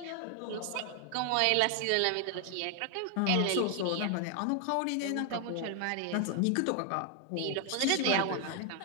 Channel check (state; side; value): different; both; correlation 0.00